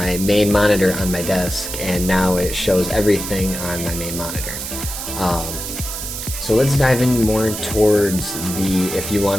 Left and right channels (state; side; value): noise; right; hiss, 7 dB below the sound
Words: main monitor on my desk, and now it shows everything on my main monitor. So let's dive in more towards if you